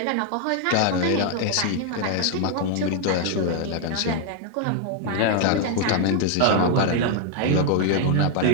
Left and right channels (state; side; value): different; both; correlation 0.00